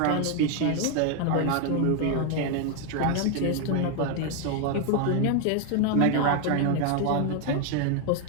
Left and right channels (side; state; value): both; different; correlation 0.01